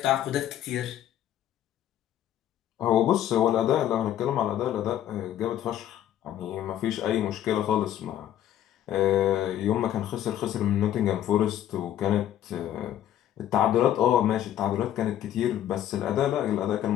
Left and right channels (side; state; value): right; quieter; 11.4 dB